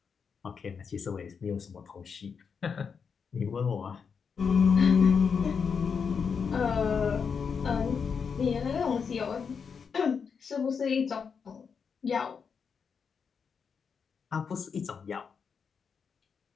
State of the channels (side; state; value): right; quieter; 6.1 dB